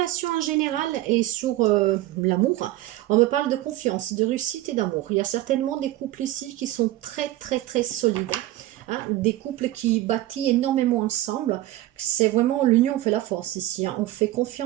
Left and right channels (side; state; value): left; quieter; 16.0 dB